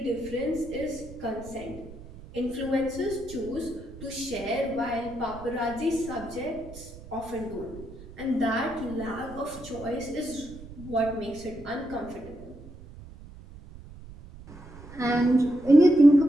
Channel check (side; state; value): right; noise; rumble, 16 dB below the sound